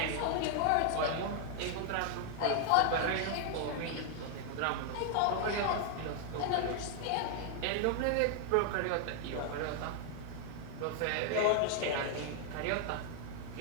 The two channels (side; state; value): both; different; correlation 0.00